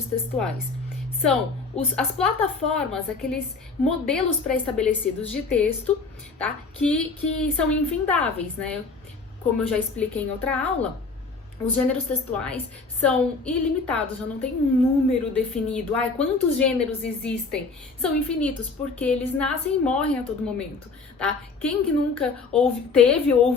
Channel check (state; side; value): quieter; right; 4.2 dB